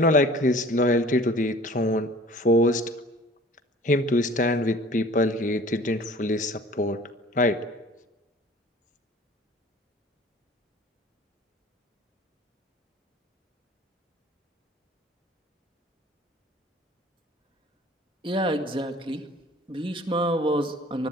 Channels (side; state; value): both; normal; correlation 0.47